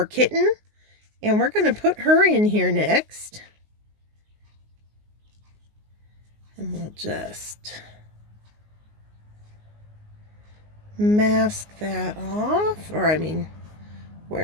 Kitten. And we're going to put her in here next. And we'll just mask that off. Or, I mean,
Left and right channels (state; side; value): late; left; 19 ms